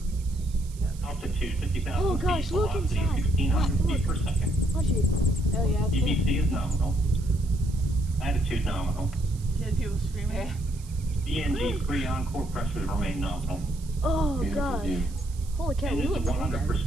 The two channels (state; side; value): noise; right; hiss, 21 dB below the sound